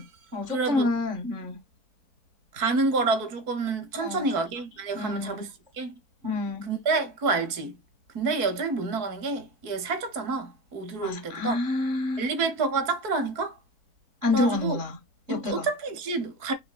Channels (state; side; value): late; left; 4.5 ms